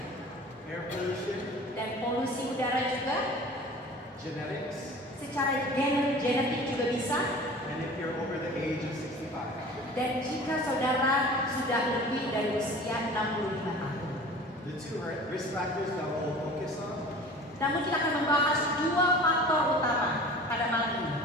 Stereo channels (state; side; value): normal; both; correlation 0.41